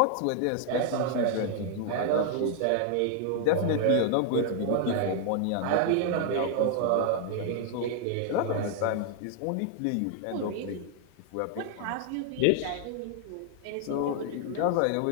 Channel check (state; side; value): different; both; correlation 0.00